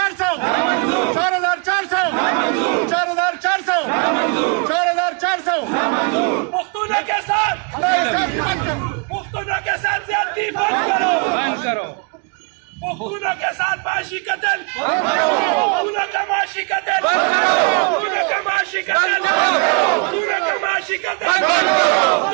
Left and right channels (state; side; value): quieter; left; 34.5 dB